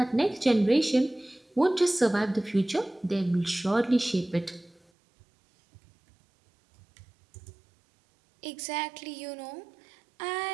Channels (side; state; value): left; drops out; at 4.8 s